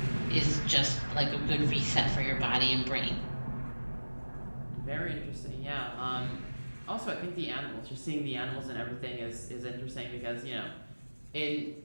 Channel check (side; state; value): both; inverted; correlation -1.00